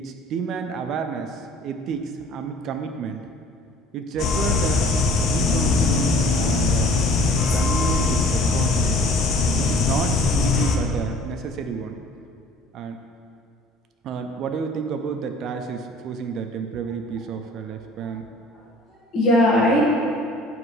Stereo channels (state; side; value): normal; both; correlation 0.50